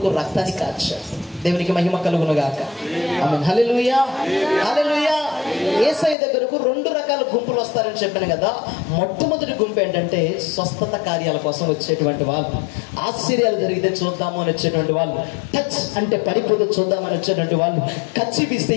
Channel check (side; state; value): right; drops out; at 6.2 s